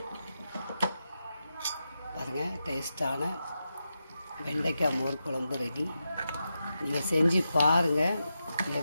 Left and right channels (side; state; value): both; inverted; correlation -0.88